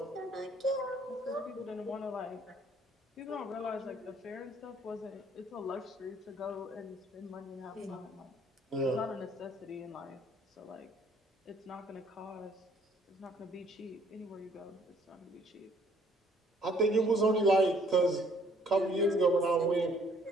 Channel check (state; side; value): normal; both; correlation 0.62